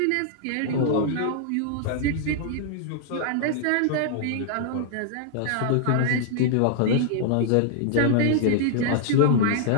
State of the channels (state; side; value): different; both; correlation -0.01